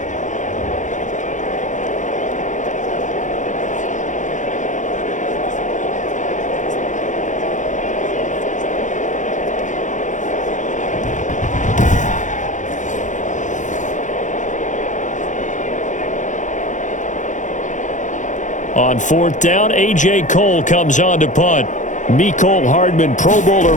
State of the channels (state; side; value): late; right; 0.36 ms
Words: On fourth down, A.J. Cole comes on to punt. Mecole Hardman, Pro Bowler